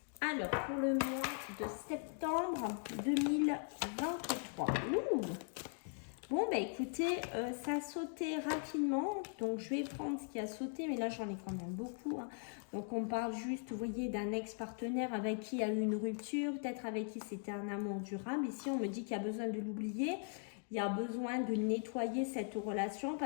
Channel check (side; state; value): right; silent; 51 dB below the other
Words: Alors, pour le mois de septembre 2023. Ouh! Bon, bah écoutez, ça a sauté rapidement, donc je vais prendre ce qui a sauté, mais là j'en ai quand même beaucoup. Hein. Donc on parle juste, vous voyez, d'un ex-partenaire avec qui il y a eu une rupture, peut-être avec qui c'était un amour durable. Ici, on me dit qu'il y a besoin de l'oublier. Il y a besoin de nettoyer cette relation